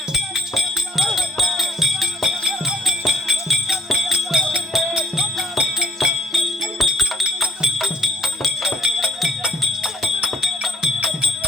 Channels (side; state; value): both; normal; correlation 0.61